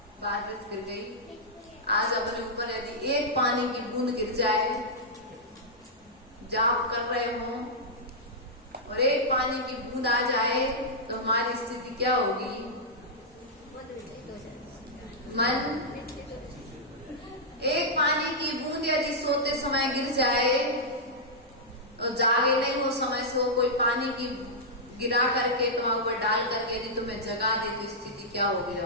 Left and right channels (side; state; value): both; normal; correlation -0.09